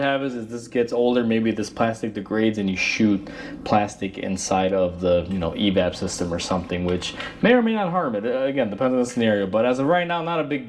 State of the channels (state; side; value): identical; both; correlation 1.00